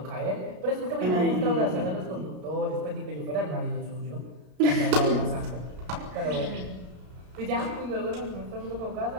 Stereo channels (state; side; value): late; left; 33 ms